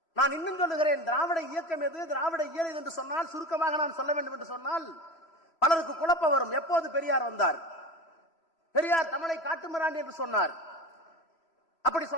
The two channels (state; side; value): late; right; 3.0 ms